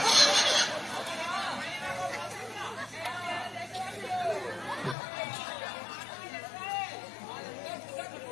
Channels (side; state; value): right; drops out; at 5.0 s